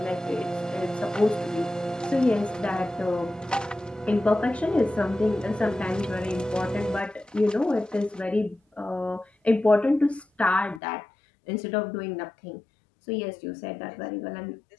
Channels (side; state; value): right; drops out; at 10.8 s